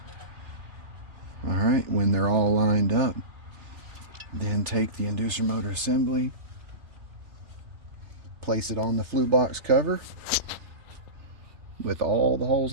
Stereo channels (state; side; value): late; left; 3.4 ms